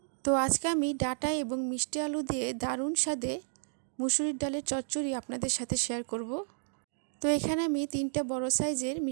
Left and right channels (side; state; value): left; silent; digital silence